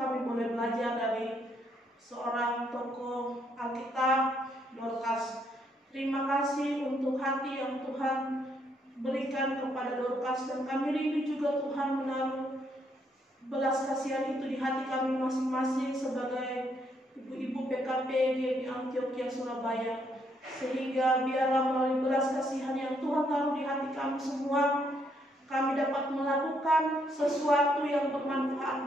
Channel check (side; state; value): both; normal; correlation 0.73